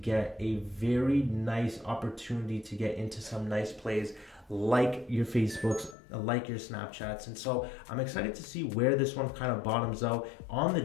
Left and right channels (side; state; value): right; drops out; at 6.0 s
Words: a very nice opportunity to get into some nice plays like your Facebooks, like your Snapchats. And so I'm excited to see where this one kind of bottoms out. On the